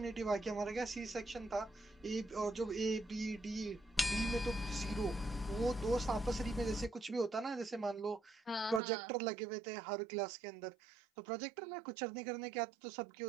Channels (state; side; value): drops out; left; at 8.8 s